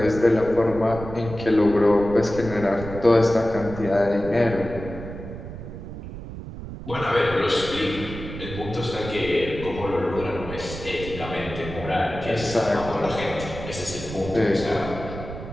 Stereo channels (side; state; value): right; noise; rumble, 10 dB below the sound